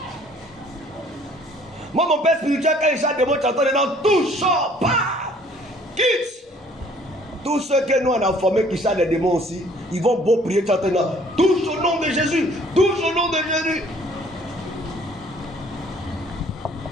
Moi, mon père spirituel, quand il chante des mots, tu entends dedans, touche, pas, quitte. Tous ceux que nous on a formés qui chantent des démons aussi, ils vont beau prier, chanter dedans, touche au nom de Jésus, touche au nom de Jésus.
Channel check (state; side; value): normal; both; correlation 0.57